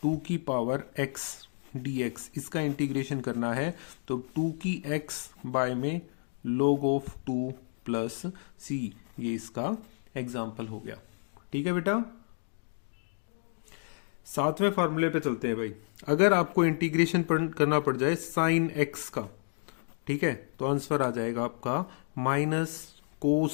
2 की पावर x dx, इसका इंटीग्रेशन करना है तो 2 की x बाय में log ऑफ 2 प्लस सी, ये इसका एग्जाम्पल हो गया। ठीक है बेटा। 7वें फार्मूले पे चलते हैं भाई। अगर आपको इंटीग्रेशन करना पड़ जाए साइन x का, ठीक है, तो आंसर आ जाएगा आपका माइनस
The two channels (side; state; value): right; silent; digital silence